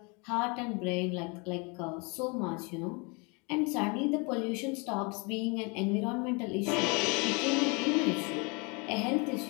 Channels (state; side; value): quieter; right; 30.8 dB